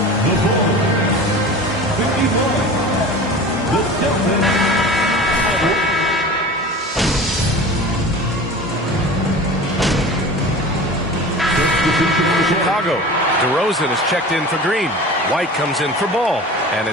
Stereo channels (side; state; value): both; normal; correlation 0.36